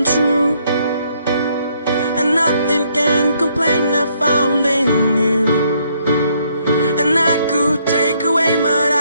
true. And nothing can complain I found in you. And I could take away, but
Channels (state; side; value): inverted; both; correlation -0.70